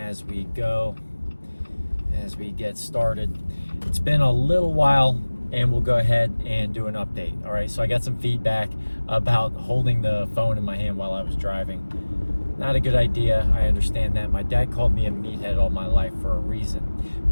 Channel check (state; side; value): inverted; both; correlation -1.00